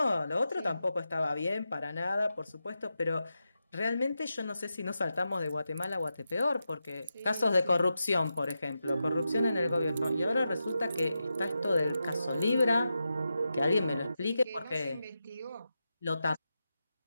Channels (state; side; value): inverted; both; correlation -0.89